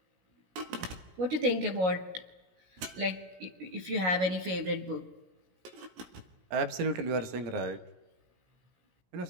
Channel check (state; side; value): late; left; 16 ms